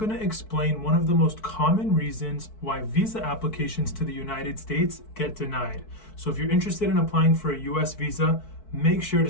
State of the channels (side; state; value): right; late; 4.6 ms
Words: to explain one of the most common reasons why visa applications to the United States get denied. So if you're interested in applying for a US visa, make sure to